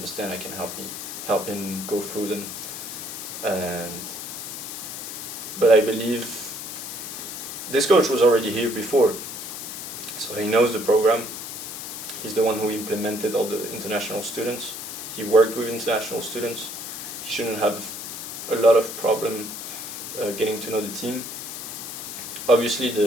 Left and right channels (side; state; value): left; noise; hiss, 8 dB below the sound